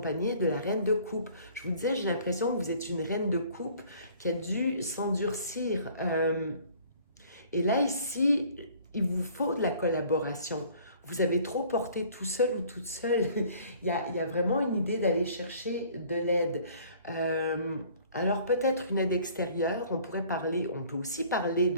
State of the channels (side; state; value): both; inverted; correlation -0.54